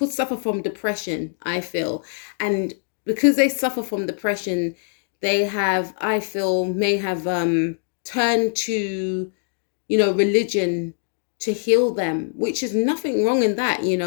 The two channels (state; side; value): silent; right; digital silence